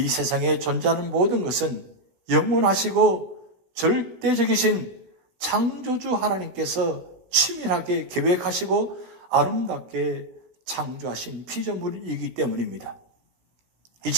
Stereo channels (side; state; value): left; late; 17 ms